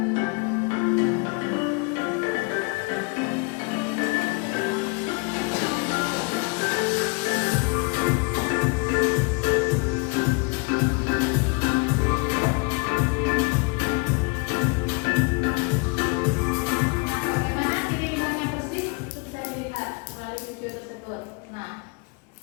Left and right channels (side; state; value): right; quieter; 31.6 dB